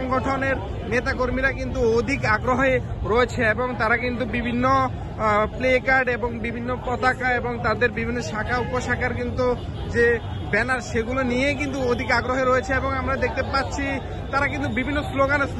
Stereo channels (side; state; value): both; identical; correlation 1.00